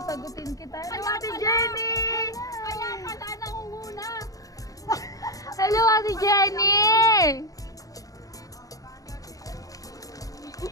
sagutin kita. Hello, Ate Jenny! Kaya pala nangunguna. Hello, Ate Jenny!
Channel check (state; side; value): late; right; 0.17 ms